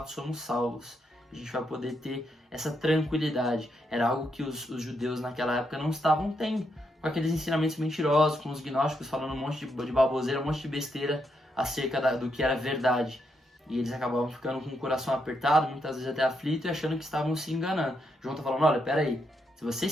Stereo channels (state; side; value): normal; both; correlation 0.80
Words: somos salvos. A gente vai poder ter essa tranquilidade. Era algo que os judeus naquela época não estavam tendo, com aqueles ensinamentos mentirosos, com os gnósticos falando um monte de baboseira, um monte de besteira acerca do que era verdade. E eles acabavam ficando com o coração apertado, muitas vezes até aflito, e achando que estavam se enganando. João está falando, olha, peraí, se você